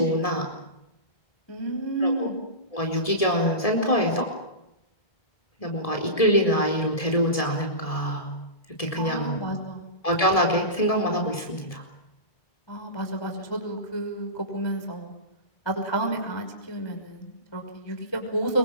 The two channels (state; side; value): late; right; 1.7 ms